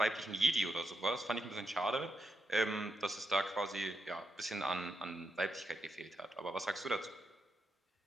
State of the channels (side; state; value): both; normal; correlation 0.83